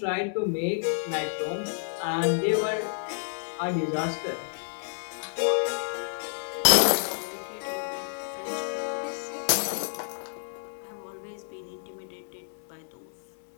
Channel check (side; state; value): right; silent; digital silence